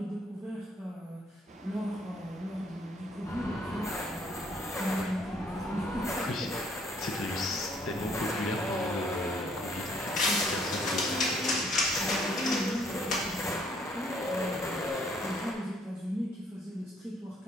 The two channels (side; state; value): both; normal; correlation 0.64